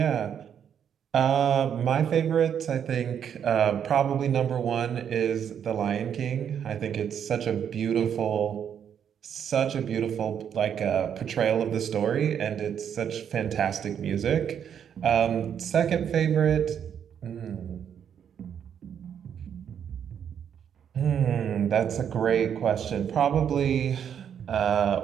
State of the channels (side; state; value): left; quieter; 8.5 dB